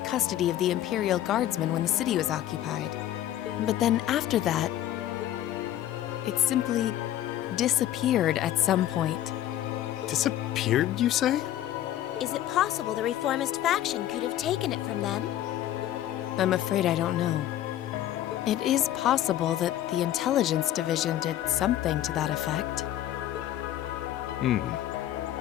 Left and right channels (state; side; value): quieter; right; 12.5 dB